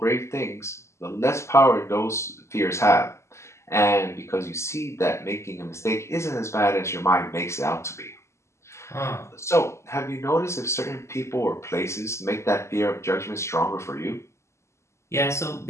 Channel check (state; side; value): late; right; 0.13 ms